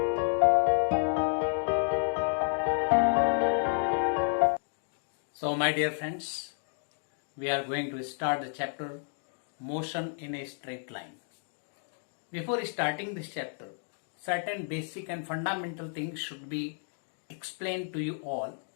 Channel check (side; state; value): right; silent; 57 dB below the other